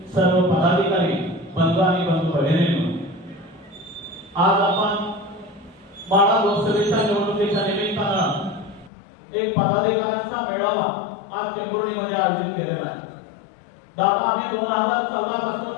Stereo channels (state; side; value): drops out; right; at 8.9 s